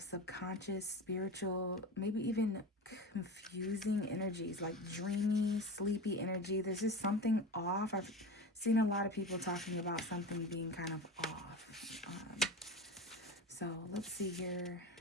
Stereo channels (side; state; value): both; normal; correlation 0.28